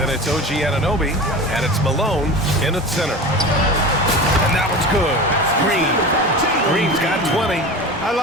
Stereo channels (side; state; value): both; normal; correlation 0.31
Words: it's OG aDoB. And it's Malone in at center. And that one's good. Green. Green's got 20. I